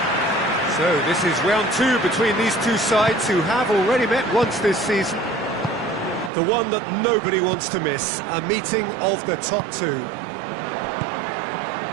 So this is round two between these two sides who have already met once this season. The one that nobody wants to miss, a meeting of the top two.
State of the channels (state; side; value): drops out; left; at 6.3 s